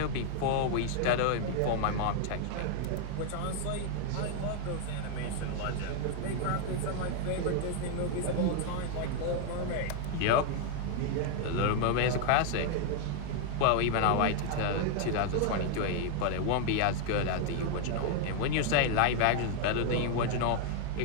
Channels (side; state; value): both; different; correlation 0.00